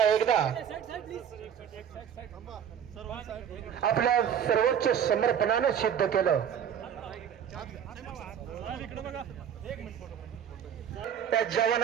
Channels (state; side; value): quieter; left; 8.7 dB